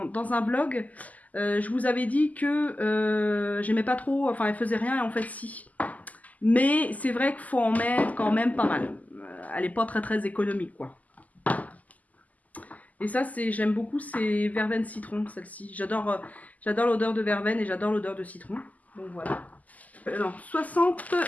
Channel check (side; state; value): right; late; 0.077 ms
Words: un vlog, je vous avais dit que j'aimais pas trop, enfin elle faisait rien et en fait si. Mais c'est vrai qu'il faut en mettre quand même pas mal. Elle est pas très économique quoi. Et ça j'aime beaucoup, c'est verveine citron celle-ci. J'adore l'odeur de verveine et j'adore l'odeur de citron. Donc voilà. Non,